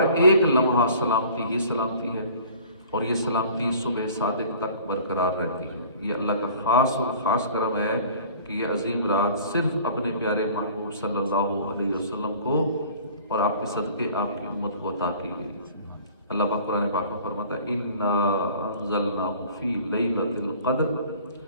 ایک لمحہ سلامتی ہی سلامتی ہے، اور یہ سلامتی صبح صادق تک برقرار رہتی ہے۔ یہ اللہ کا خاص اور خاص کرم ہے کہ یہ عظیم رات صرف اپنے پیارے محبوب صلی اللہ علیہ وسلم کو اور آپ کے صدقے آپ کی امت کو عطا کی گئی۔ اللہ پاک قرآن پاک میں فرماتا ہے اِنَّا أَنزَلْنَاهُ فِي لَيْلَةِ الْقَدْرِ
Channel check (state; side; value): inverted; both; correlation -0.48